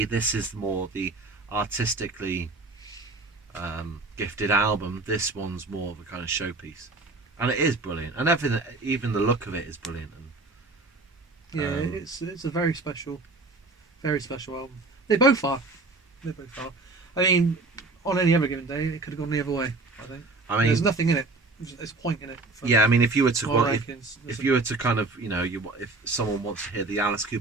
this is more the artistically gifted album. This one's more of a kind of showpiece, and it is brilliant. And everything, even the look of it, is brilliant. And yeah, it's a very special album. They both are. I mean, on any other given day, it could have gone the other way. I think. There's nothing in it. There's a point in it. Yeah, I mean, if you were to if you were to kind of if someone wants to hear the Alice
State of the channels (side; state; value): left; quieter; 3.4 dB